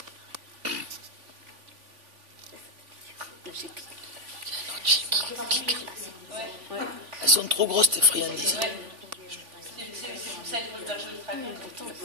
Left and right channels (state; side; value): late; left; 3.5 ms